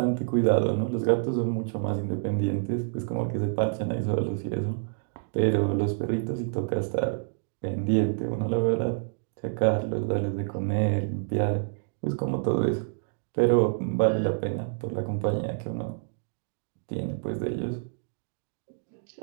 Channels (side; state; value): left; silent; digital silence